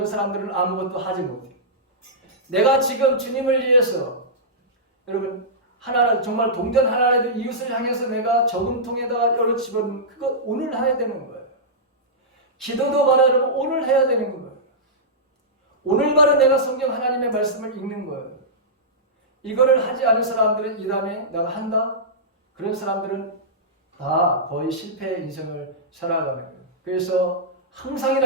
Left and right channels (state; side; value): normal; both; correlation -0.14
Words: 사람들은 아무것도 하지 못해요. 내가 지금 주님을 위해서 여러분 하나님 정말 동전 하나라도 이웃을 향해서 내가 저금통에다가 열어 집어넣는 그거 오늘 해야 되는 거예요. 기도도 바로 여러분 오늘 해야 되는 거예요. 오늘 바로 내가 성경 하나님의 말씀을 읽는 거예요. 이거를 하지 않은 사람들은 이 다음에 내가 한다? 그런 사람들은 다 거의 실패의 인생을 살아가는 거예요. 그래서